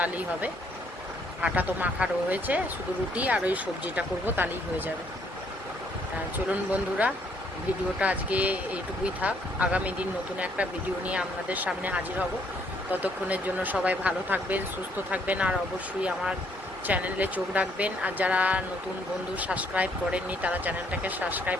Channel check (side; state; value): both; normal; correlation 0.68